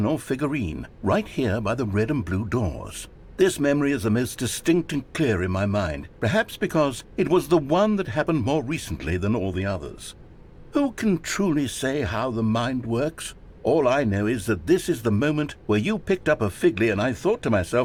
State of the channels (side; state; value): both; identical; correlation 1.00